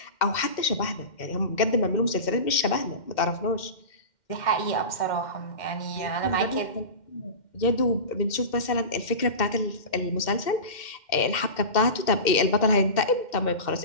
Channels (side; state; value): right; late; 2.1 ms